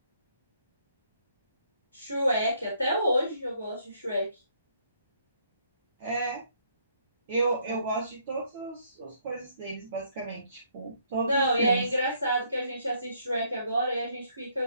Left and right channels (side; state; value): both; inverted; correlation -0.68